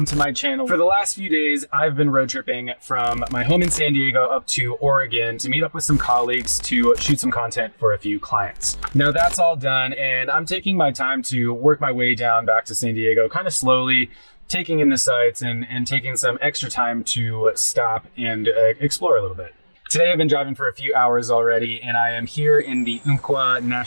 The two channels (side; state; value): both; inverted; correlation -1.00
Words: to my channel. For the last few days, I've been road tripping from my home in San Diego up to Oregon to meet up with some colleagues to shoot some content for a few clients. Now that's all done and I'm taking my time to work my way down back to San Diego kind of slowly, taking in the sights and taking some extra time to stop and explore a little bit. Today I've been driving for a few hours already and I am here in the Wacaco